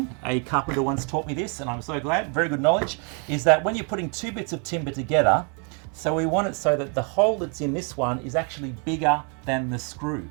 A carpenter once taught me this, and I'm so glad, very good knowledge, is that when you're putting 2 bits of timber together, so we want it so that the hole that's in this one is actually bigger than the screw.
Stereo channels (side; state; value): left; quieter; 37.4 dB